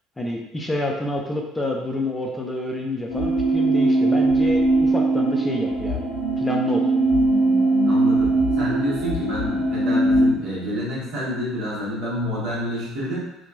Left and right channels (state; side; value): normal; both; correlation 0.74